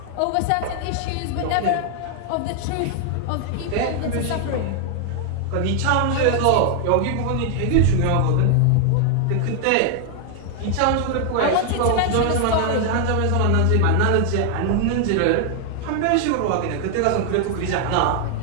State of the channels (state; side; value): different; both; correlation 0.00